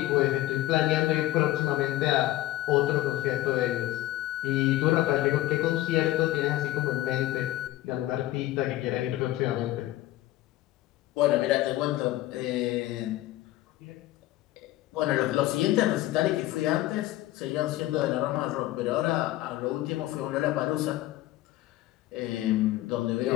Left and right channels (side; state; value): right; quieter; 15.8 dB